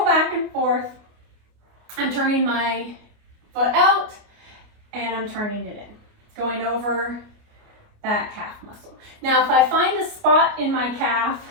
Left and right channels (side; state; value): left; late; 29 ms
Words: back and forth, I'm turning my foot out and I'm turning it in, going over that calf muscle. Now, if I find a spot in my calf